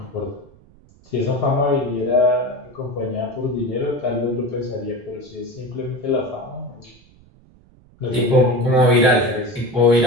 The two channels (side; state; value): right; noise; rumble, 28 dB below the sound